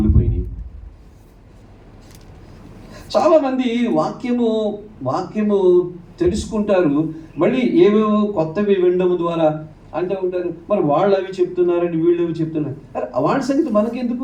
చాలామంది వాక్యము తెలుసుకుంటారు, మళ్ళీ ఏవేవో కొత్తవి వినడం ద్వారా అంటూ ఉంటారు. మరి వాళ్ళు అవి చెప్తున్నారండి, వీళ్ళు అవి చెప్తున్నారు. అరే వాళ్ళ సంగతి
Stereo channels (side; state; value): both; identical; correlation 1.00